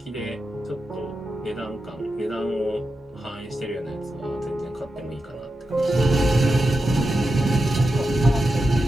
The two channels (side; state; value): both; normal; correlation 0.89